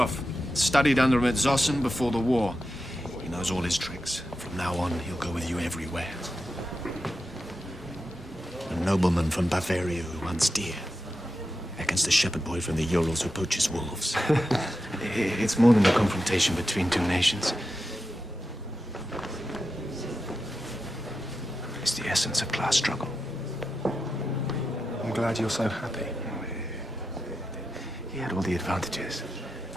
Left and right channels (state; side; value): normal; both; correlation 0.89